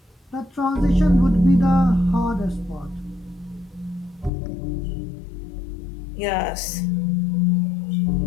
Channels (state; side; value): drops out; right; at 4.3 s